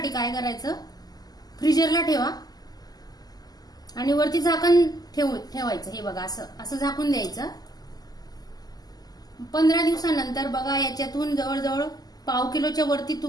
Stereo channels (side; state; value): right; late; 0.19 ms